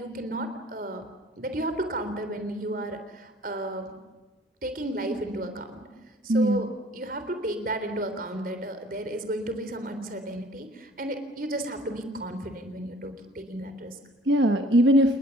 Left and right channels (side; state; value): both; normal; correlation 0.52